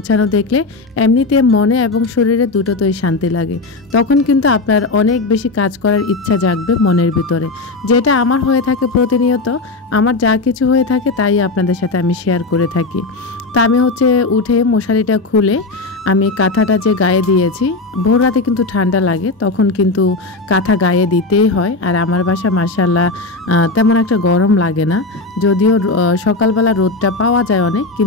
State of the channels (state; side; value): quieter; right; 3.4 dB